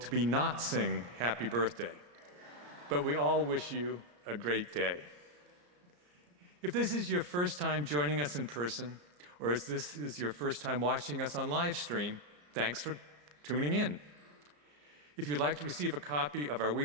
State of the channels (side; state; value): left; late; 34 ms